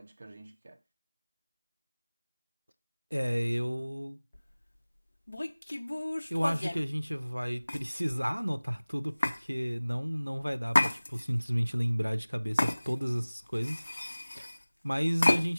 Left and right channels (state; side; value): inverted; both; correlation -0.99